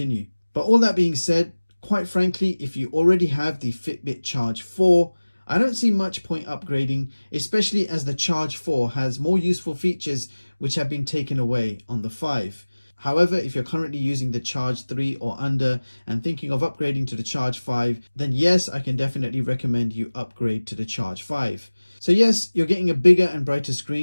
But all that being said, quite frankly, if you already have the Fitbit Charge 4, I don't see much point upgrading, especially as the Charge 4 has more useful features which have been taken away on the 5. However, if you're currently using the Charge 3 or under and thinking of upgrading to the Charge 5, then yes, I can definitely recommend you upgrade to the Charge 5. So yes, you're getting a bigger and brighter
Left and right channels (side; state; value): both; inverted; correlation -1.00